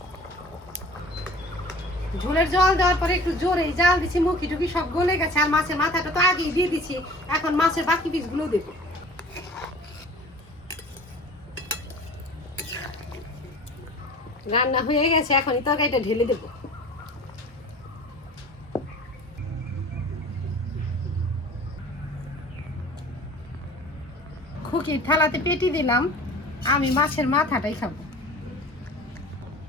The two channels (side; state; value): both; normal; correlation 0.44